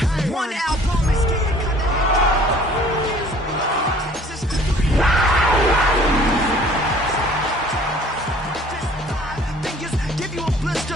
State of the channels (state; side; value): normal; both; correlation 0.53